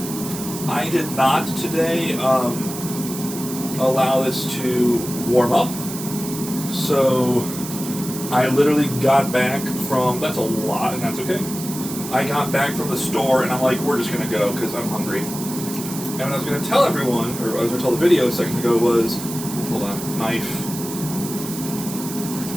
I did not today allow this to warm up. So I literally got back from, that's a lot, and that's okay. I got back from the store, and I'm like, we're just going to go, because I'm hungry. And what I was going to tell everyone, or I was going to tell the video a second ago was, hold on, knife.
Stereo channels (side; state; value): right; noise; hiss, 9 dB below the sound